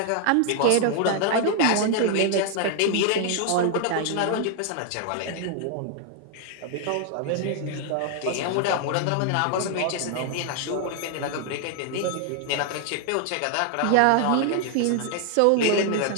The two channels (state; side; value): different; both; correlation 0.00